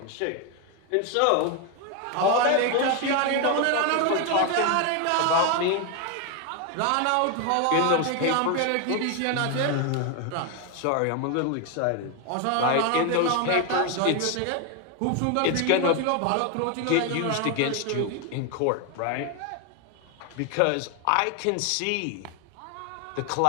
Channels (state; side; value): different; both; correlation 0.01